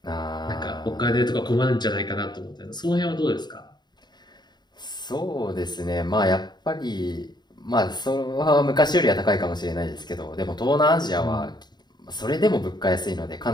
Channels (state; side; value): late; right; 0.21 ms